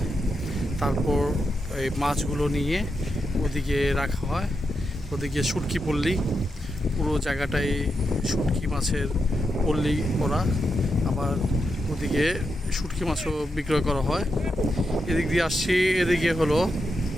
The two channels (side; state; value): both; normal; correlation 0.85